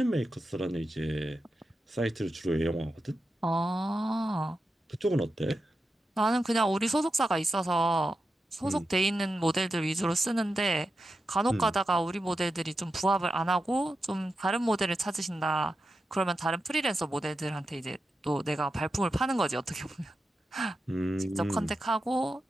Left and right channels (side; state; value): both; normal; correlation 0.89